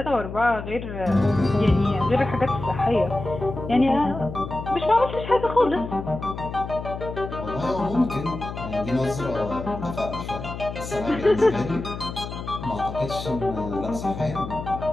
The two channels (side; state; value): left; noise; hum, 8 dB below the sound